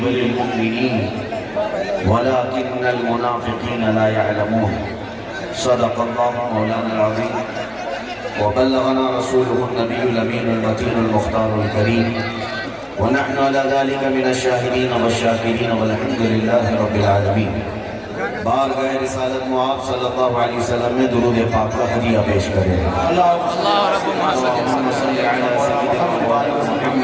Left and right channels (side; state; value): both; identical; correlation 1.00